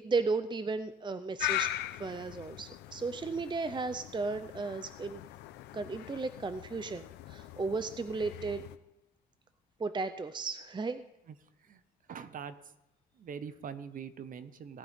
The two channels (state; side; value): normal; both; correlation 0.56